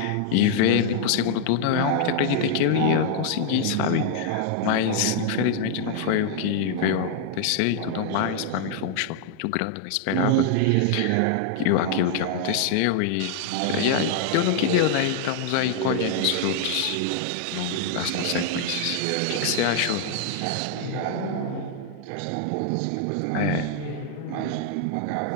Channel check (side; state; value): both; different; correlation 0.00